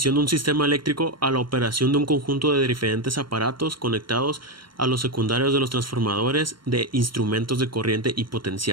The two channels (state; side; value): late; left; 0.73 ms